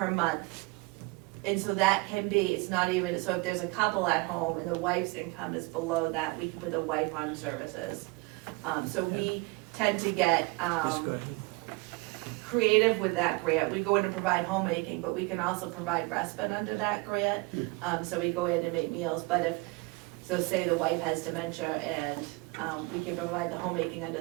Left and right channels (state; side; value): quieter; left; 25.3 dB